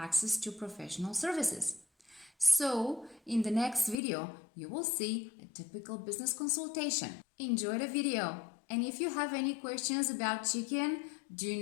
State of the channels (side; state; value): right; drops out; at 4.0 s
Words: to professional services. So, in the next video, you will see a typical business consultation. Enjoy the video. And if you have any questions about chicken, do